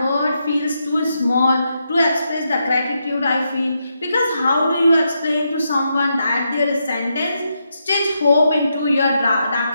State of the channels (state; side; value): inverted; both; correlation -0.82